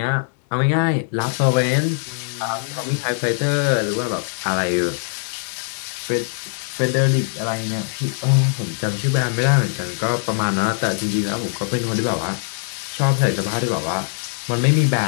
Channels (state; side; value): silent; right; 65 dB below the other